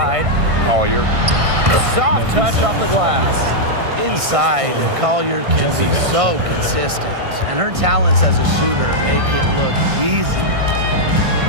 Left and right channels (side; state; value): left; late; 1.6 ms